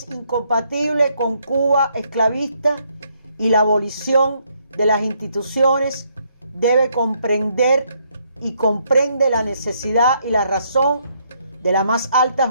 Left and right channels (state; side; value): inverted; both; correlation -0.72